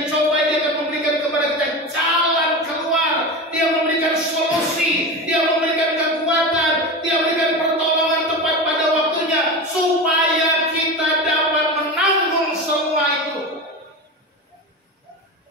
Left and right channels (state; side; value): normal; both; correlation 0.25